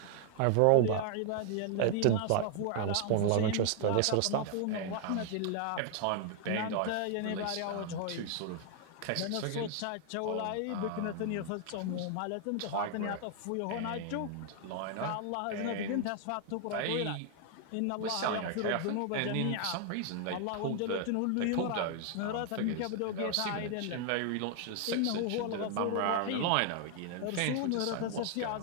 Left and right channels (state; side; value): different; both; correlation 0.00